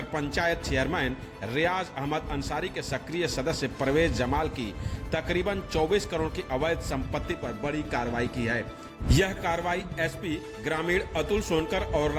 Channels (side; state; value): both; identical; correlation 1.00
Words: पंचायत चेयरमैन रियाज अहमद अंसारी के सक्रिय सदस्य परवेज जमाल की तकरीबन 24 करोड़ की अवैध संपत्ति पर बड़ी कार्रवाई की है। यह कार्रवाई SP ग्रामीण अतुल सोनकर और